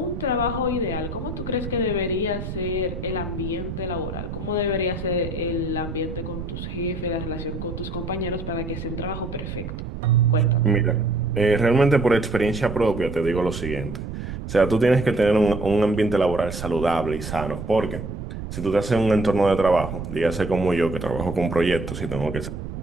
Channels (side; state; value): right; noise; rumble, 7 dB below the sound